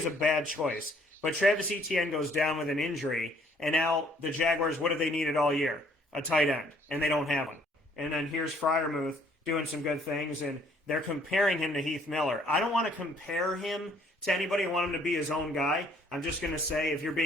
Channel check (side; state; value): both; normal; correlation 0.62